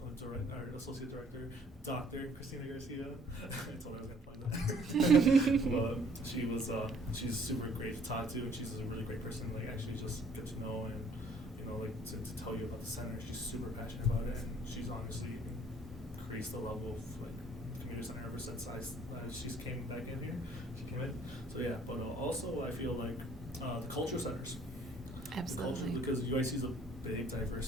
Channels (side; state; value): both; normal; correlation 0.59